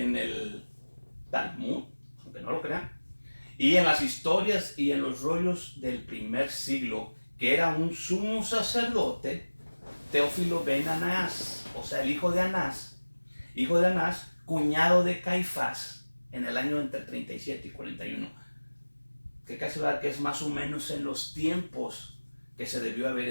el Talmud, aunque no lo crean, y en las historias y en los rollos del primer siglo, que era un sumo sacerdote, Teófilo ben Anás, o sea, el hijo de Anás, cuñado de Caifás, en el año entre 37 y 41. Que casi verdad que es más o menos en los tiempos que se debió haber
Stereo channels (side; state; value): both; inverted; correlation -1.00